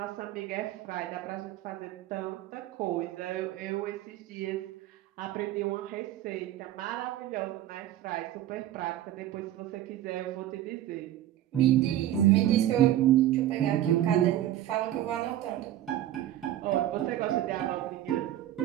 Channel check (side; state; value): left; quieter; 12.9 dB